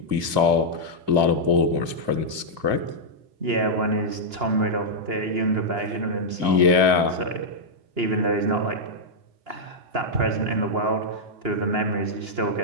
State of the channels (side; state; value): left; late; 2.4 ms